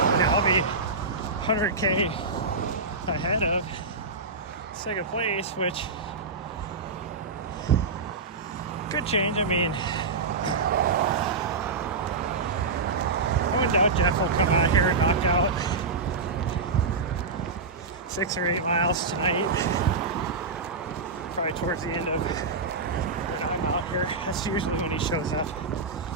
I'll be 100K ahead of second place, which could change. I mean, I wouldn't doubt Jeff will come out here and knock out 6 or 8 miles tonight, probably towards the end of when I'm out here. That's usually when he shows up,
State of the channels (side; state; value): left; quieter; 4.1 dB